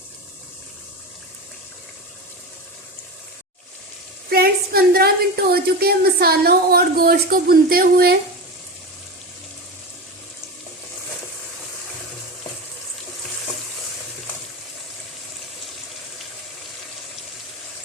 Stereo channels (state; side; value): normal; both; correlation 0.24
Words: फ्रेंड्स, 15 मिनट हो चुके हैं मसालों और गोश्त को भूनते हुए।